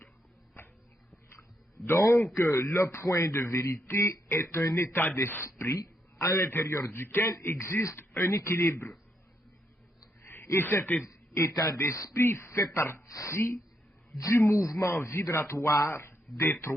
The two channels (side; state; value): both; normal; correlation 0.78